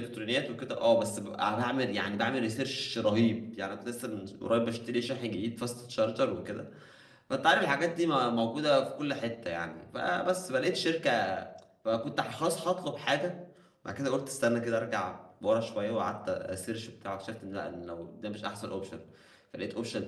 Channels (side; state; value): both; identical; correlation 1.00